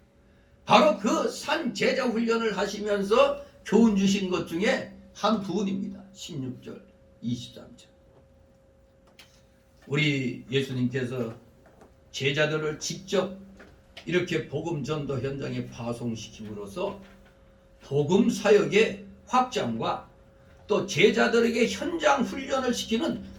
바로 그 산 제자 훈련을 하시면서 교훈 주신 것 중에 한 부분입니다. 16절, 23절. 우리 예수님께서 제자들을 직접 이렇게 복음 전도 현장에 파송시킴으로써 복음 사역의 확장과 또 제자들에게 현장 훈련을 시키는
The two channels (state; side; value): identical; both; correlation 1.00